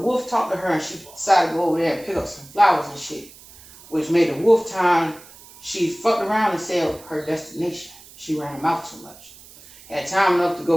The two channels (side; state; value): right; noise; hiss, 21 dB below the sound